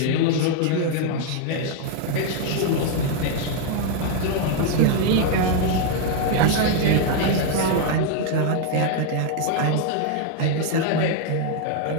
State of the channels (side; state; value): both; different; correlation 0.00